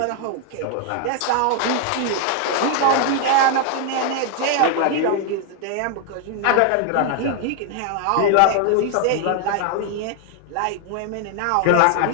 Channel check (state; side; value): different; both; correlation 0.00